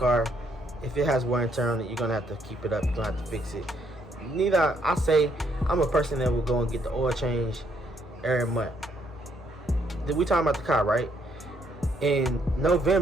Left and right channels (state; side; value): normal; both; correlation 0.71